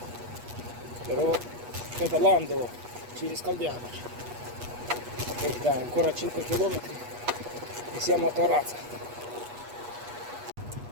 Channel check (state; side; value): late; left; 8.3 ms